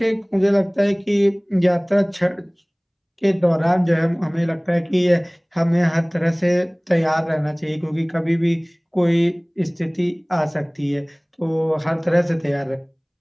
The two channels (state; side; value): identical; both; correlation 1.00